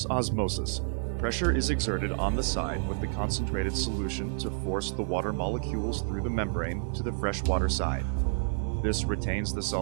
osmosis, pressure is exerted on the side with the concentrated solution to force the water molecules through the membrane to the freshwater side. This retains the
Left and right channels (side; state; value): left; silent; digital silence